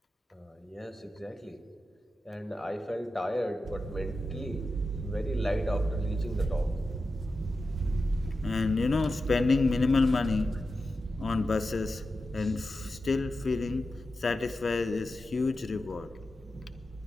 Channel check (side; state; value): both; normal; correlation 0.91